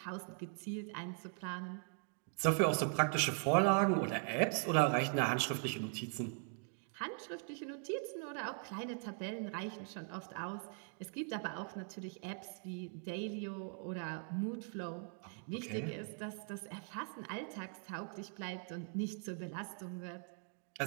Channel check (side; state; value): left; silent; 51 dB below the other